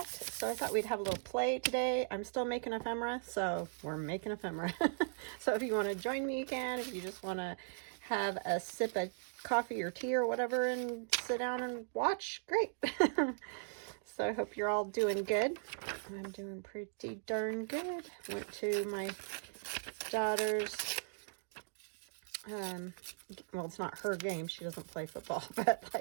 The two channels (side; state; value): left; silent; digital silence